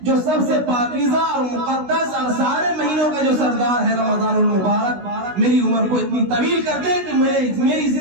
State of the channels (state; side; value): late; left; 16 ms